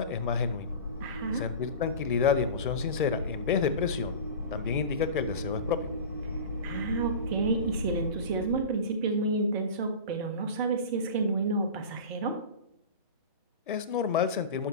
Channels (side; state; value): both; inverted; correlation -0.32